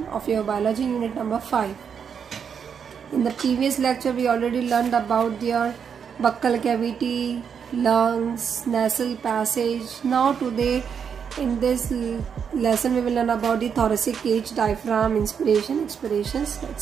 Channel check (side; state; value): left; quieter; 7.1 dB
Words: of your biology unit number 5. In the previous lecture we already learned about your buccal cavity, lungs, nasal passage. Now today in this lesson we will learn about the thoracic cage, diaphragm, inspiration, expirations.